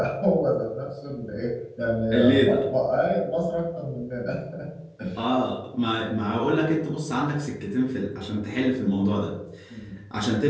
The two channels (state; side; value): identical; both; correlation 1.00